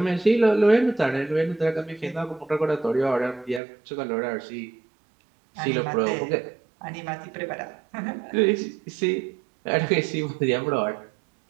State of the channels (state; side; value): drops out; left; at 3.6 s